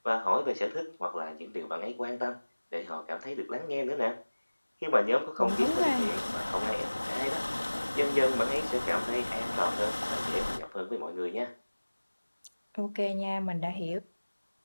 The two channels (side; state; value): both; inverted; correlation -1.00